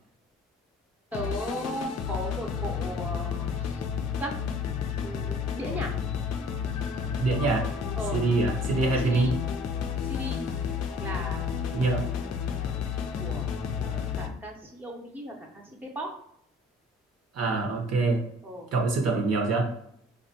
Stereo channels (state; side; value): normal; both; correlation 0.52